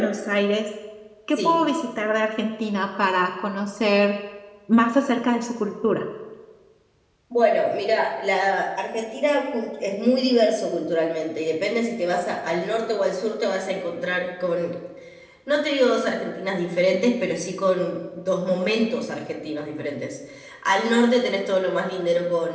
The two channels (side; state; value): both; identical; correlation 1.00